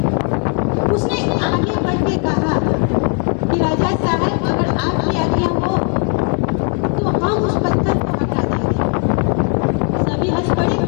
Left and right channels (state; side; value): quieter; right; 38.1 dB